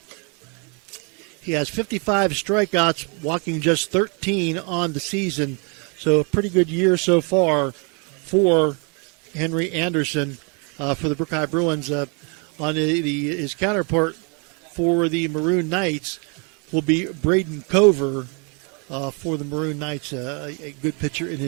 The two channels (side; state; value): left; quieter; 34.9 dB